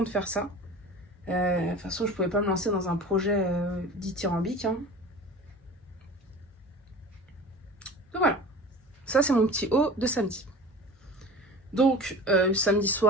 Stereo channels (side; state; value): both; normal; correlation 0.38